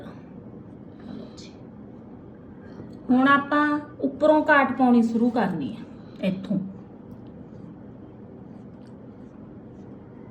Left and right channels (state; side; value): identical; both; correlation 1.00